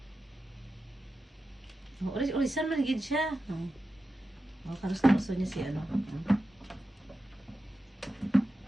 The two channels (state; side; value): normal; both; correlation 0.91